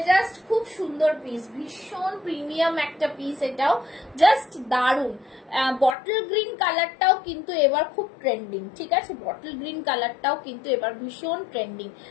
জাস্ট খুব সুন্দর পিস, ভীষণ প্রিমিয়াম একটা পিস, এটাও জাস্ট দারুন। বটল গ্রিন কালারটাও কিন্তু এবার খুব ট্রেন্ডিং। ঠিক আছে, বটল গ্রিন কালারটাও কিন্তু এবার ভীষণ ট্রেন্ডিং,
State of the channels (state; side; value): drops out; right; at 6.0 s